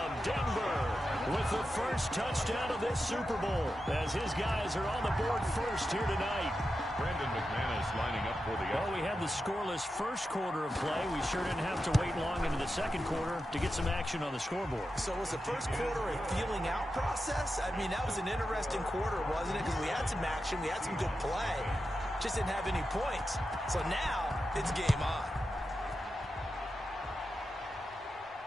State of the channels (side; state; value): both; normal; correlation 0.90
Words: Denver, with the first touchdown of this Super Bowl, as his guys are on the board first here tonight. Brandon McManus lining up for the... Well, we had the scoreless first quarter of play. We sure didn't have to wait long into the second quarter to get some action on the scoreboard. So was the first quarter a feeling out process? I mean, that was an interesting quarter, wasn't it? Because we had some action, we had some good play, just didn't have any points. So now it's game on.